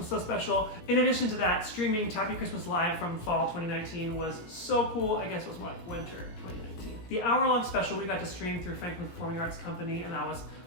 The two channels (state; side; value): late; right; 17 ms